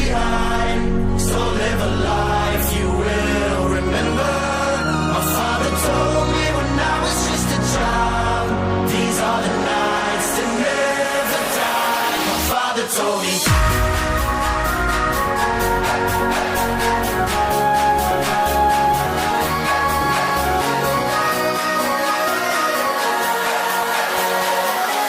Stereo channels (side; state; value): both; identical; correlation 1.00